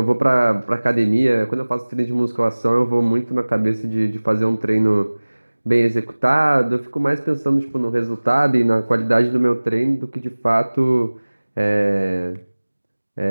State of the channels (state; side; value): inverted; both; correlation -1.00